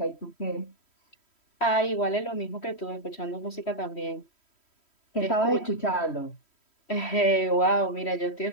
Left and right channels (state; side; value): late; right; 3.1 ms